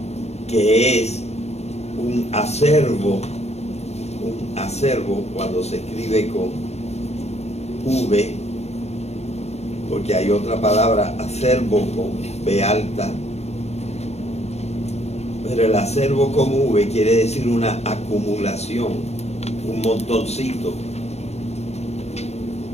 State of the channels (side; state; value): right; late; 0.31 ms